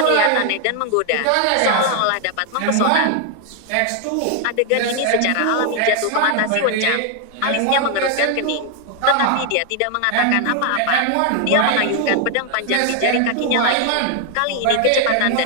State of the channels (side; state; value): both; different; correlation 0.00